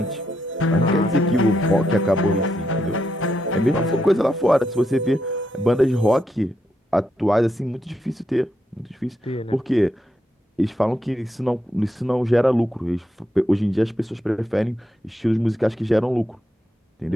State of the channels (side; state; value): both; normal; correlation 0.82